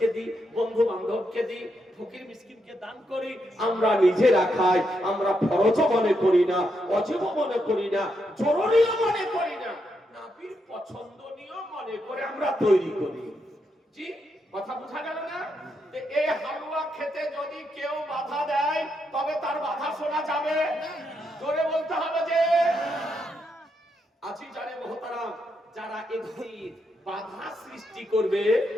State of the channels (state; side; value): normal; both; correlation 0.81